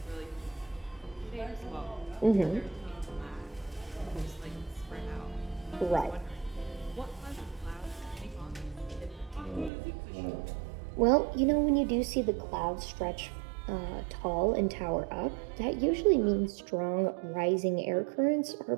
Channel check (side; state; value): left; drops out; at 9.7 s